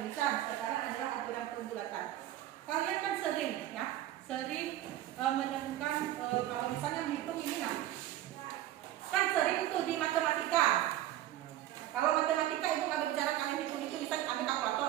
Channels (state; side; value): quieter; left; 13.6 dB